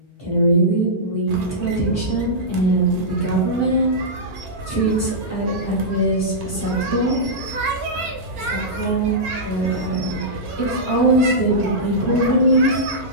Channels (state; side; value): normal; both; correlation -0.13